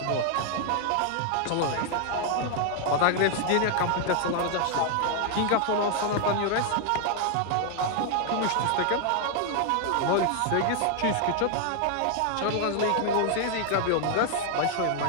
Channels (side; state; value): both; different; correlation 0.00